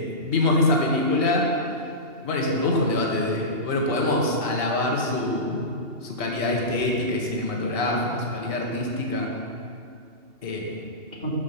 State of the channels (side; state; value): left; late; 2.8 ms